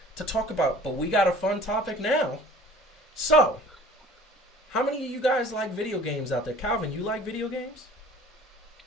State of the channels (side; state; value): both; normal; correlation 0.47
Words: to talk about, but we got a fun topic now. So, how many of you guys like video games out there? Calvin, you like video games?